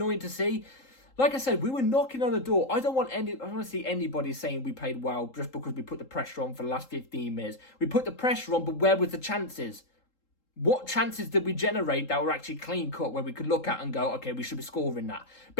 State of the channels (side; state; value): right; late; 3.8 ms